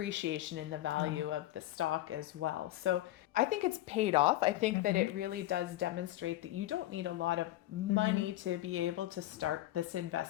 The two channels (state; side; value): quieter; right; 15.2 dB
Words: in the value of the stock as well. So I think it's paid off. I think that it really does demonstrate that you don't need a lot of money to be able to start this